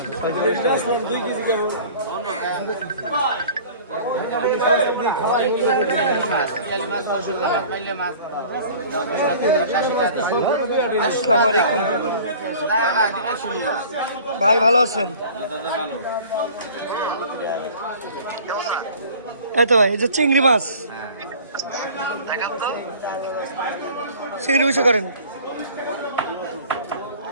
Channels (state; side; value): inverted; both; correlation -0.46